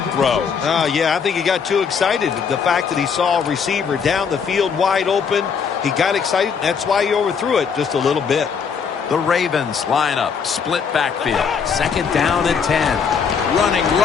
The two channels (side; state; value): right; quieter; 6.3 dB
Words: throw. Yeah, I think he got too excited. The fact that he saw a receiver down the field wide open, he got excited. That's why he overthrew it just a little bit. The Ravens line up, split backfield. Second down and 10. Running